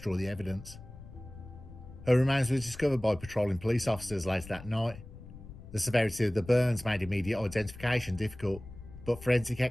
the evidence. Her remains were discovered by patrolling police officers later that night. The severity of the burns made immediate identification difficult, but forensic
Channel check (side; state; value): left; noise; rumble, 16 dB below the sound